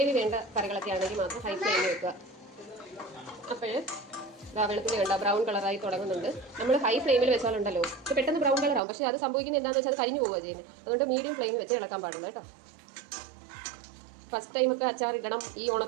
വേണ്ട കറികളൊക്കെ ആണെങ്കിൽ മാത്രം ഹൈ ഫ്ലെയിമിൽ വെക്കുക. അപ്പോൾ വെളുത്തുള്ളി വേണ്ട ബ്രൗൺ കളറായി തുടങ്ങുന്നുണ്ട്. നമ്മൾ ഹൈ ഫ്ലെയിമിൽ വെച്ചാലുണ്ടല്ലോ ഇത് പെട്ടെന്ന് ബ്രൗൺ കളറാവും. പക്ഷേ അത് സംഭവിക്കുന്നത് എന്താണെന്ന് വെച്ചാൽ അത് കരിഞ്ഞു പോവുക ചെയ്യുന്നത്. അതുകൊണ്ട് മീഡിയം ഫ്ലെയിമിൽ വെച്ച് ഇളക്കാൻ പാടുള്ളൂ കേട്ടോ. ഫസ്റ്റ് ടൈമൊക്കെ അച്ചാർ ഇടണം, ഈ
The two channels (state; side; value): drops out; left; at 8.8 s